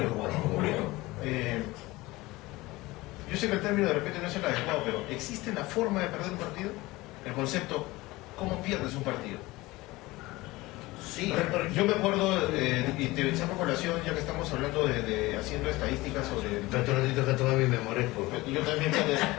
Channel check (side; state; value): right; quieter; 20.3 dB